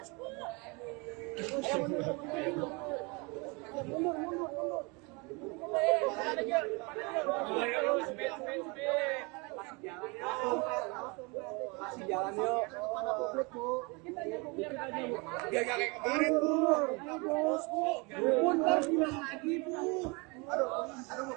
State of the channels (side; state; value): left; quieter; 29.1 dB